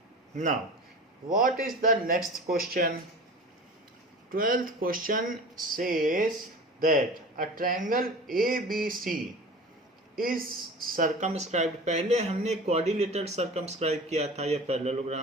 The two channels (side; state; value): both; normal; correlation 0.37